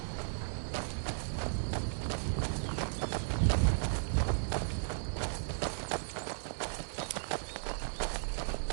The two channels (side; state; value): left; silent; digital silence